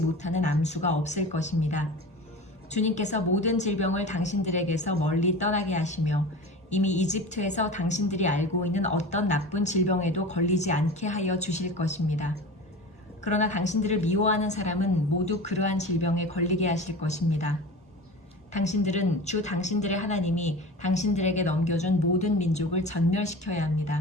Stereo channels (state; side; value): normal; both; correlation 0.33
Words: 못하는 암수가 없을 것입니다. 주님께서 모든 질병을 당신들에게서 멀리 떠나게 하시며 이미 이집트에서 당신들이 알고 있는 어떤 나쁜 질병에도 걸리지 않게 하여 주실 것입니다. 그러나 당신들을 미워하는 사람은 모두 그러한 질병에 걸리게 하실 것입니다. 당신들은 주 당신들의 하나님이 당신들에게 넘겨준 모든 민족을 전멸시켜야